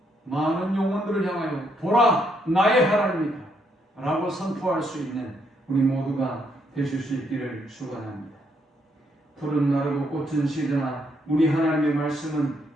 많은 영혼들을 향하여 보라, 나의 하나님이다 라고 선포할 수 있는 우리 모두가 되실 수 있기를 축원합니다. 푸른 나르고 꽃은 시드나 우리 하나님의 말씀은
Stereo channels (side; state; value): both; normal; correlation 0.74